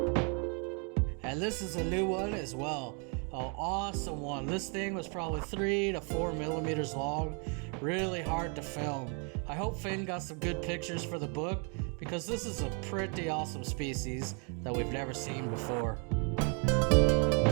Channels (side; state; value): left; quieter; 37.2 dB